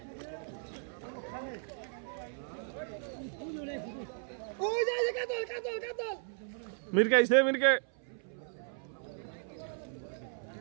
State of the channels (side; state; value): left; silent; 54 dB below the other